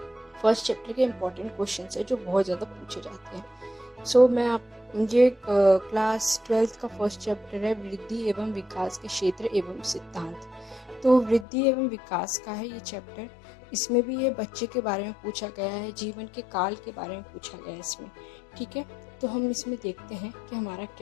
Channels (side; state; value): right; drops out; at 11.5 s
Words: फर्स्ट चैप्टर के इम्पोर्टेंट क्वेश्चंस है जो बहुत ज़्यादा पूछे जाते हैं। ये क्लास 12th का फर्स्ट चैप्टर है, वृद्धि एवं विकास के क्षेत्र एवं सिद्धांत। तो वृद्धि एवं विकास का है ये चैप्टर। इसमें भी ये बच्चे के बारे में पूछा गया है, जीवन के काल के बारे में पूछा गया है इसमें। ठीक है, तो हम इसमें देखते हैं कि हमारा